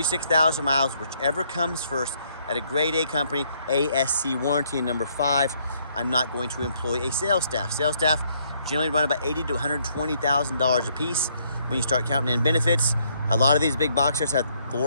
miles, whichever comes first. at a grade A company, ASC warranty. And number 5, I'm not going to employ a sales staff. Sales staff generally run about $80,000 to $120,000 a piece when you start counting in benefits. A lot of these big boxers have 4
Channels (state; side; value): inverted; both; correlation -0.69